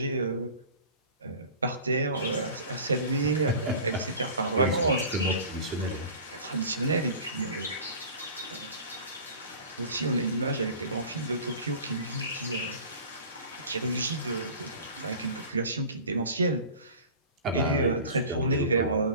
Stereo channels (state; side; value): inverted; both; correlation -0.40